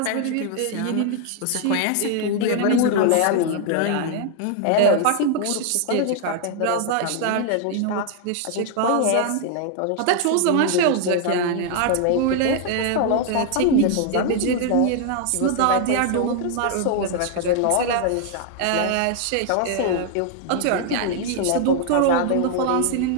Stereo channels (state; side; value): different; both; correlation 0.00